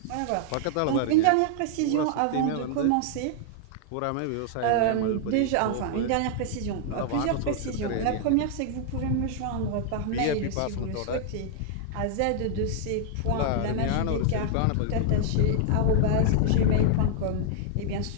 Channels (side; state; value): both; different; correlation -0.01